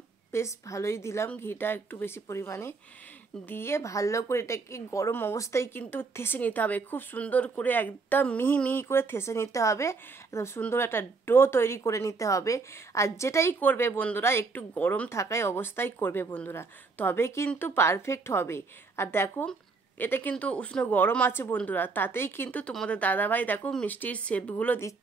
বেশ ভালোই দিলাম ঘিটা একটু বেশি পরিমাণে দিয়ে ভালো করে এটাকে গরম অবস্থায় কিন্তু থেসে নিতে হবে, খুব সুন্দর করে একদম মিহি মিহি করে থেসে নিতে হবে, একদম সুন্দর একটা ডো তৈরি করে নিতে হবে। আর যেটাই করবে বন্ধুরা একটু গরম থাকায় অবস্থায় করবে বন্ধুরা, তবে কিন্তু পারফেক্ট হবে। আর দেখো এটা কিন্তু উষ্ণ গরম আছে বন্ধুরা, তাতেই কিন্তু তোমাদের দাদাভাই দেখো মিষ্টির শেপগুলো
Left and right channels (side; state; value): left; quieter; 4.3 dB